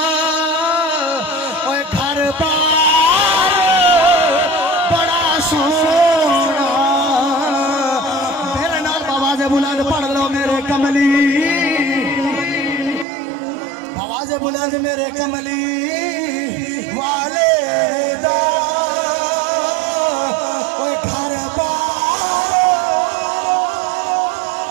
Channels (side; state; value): left; drops out; at 13.1 s